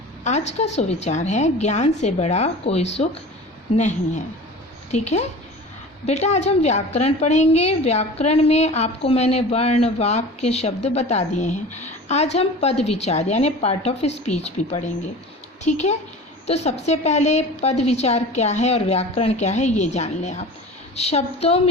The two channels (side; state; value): both; normal; correlation 0.37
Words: आज का सुविचार है ज्ञान से बड़ा कोई सुख नहीं है। ठीक है बेटा, आज हम व्याकरण पढ़ेंगे। व्याकरण में आपको मैंने वर्ण, वाक्य, शब्द बता दिए हैं। आज हम पद विचार यानी पार्ट ऑफ स्पीच भी पढ़ेंगे। ठीक है, तो सबसे पहले पद विचार क्या है और व्याकरण क्या है ये जान लें आप। शब्दों